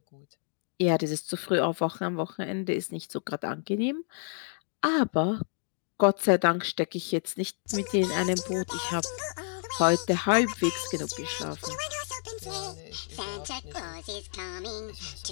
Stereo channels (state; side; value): silent; right; 58 dB below the other